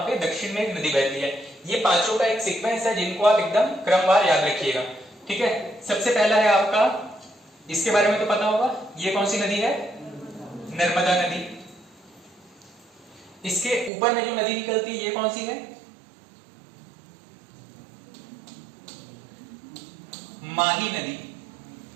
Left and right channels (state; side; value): drops out; left; at 13.9 s